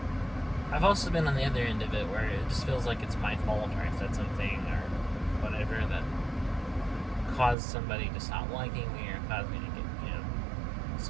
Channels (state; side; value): drops out; left; at 7.6 s